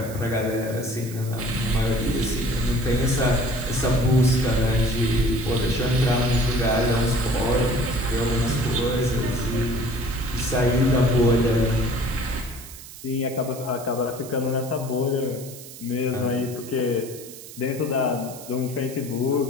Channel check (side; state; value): right; noise; hiss, 15 dB below the sound